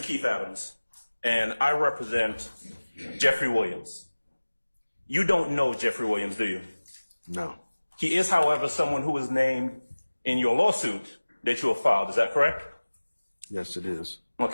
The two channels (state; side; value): inverted; both; correlation -1.00